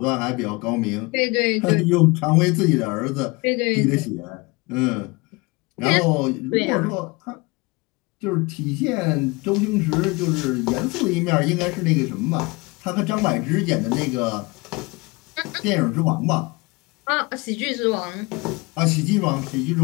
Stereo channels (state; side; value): quieter; right; 25.6 dB